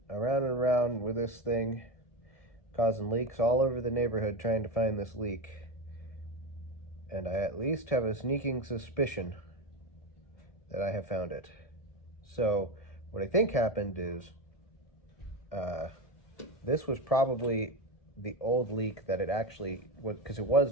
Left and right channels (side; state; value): right; late; 1.7 ms